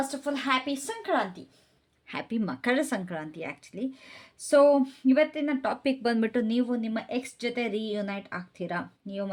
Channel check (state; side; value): identical; both; correlation 1.00